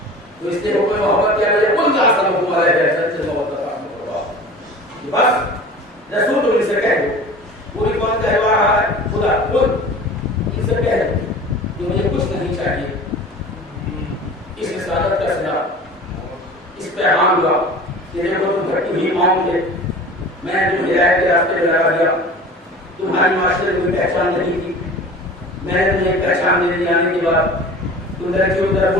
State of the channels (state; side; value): normal; both; correlation 0.39